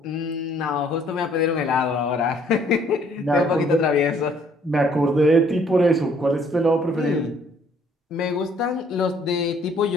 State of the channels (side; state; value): both; normal; correlation 0.62